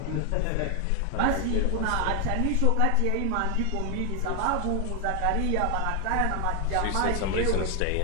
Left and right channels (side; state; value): both; different; correlation 0.00